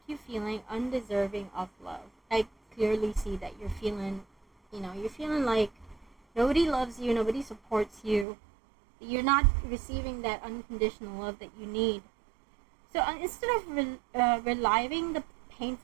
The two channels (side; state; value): left; drops out; at 8.2 s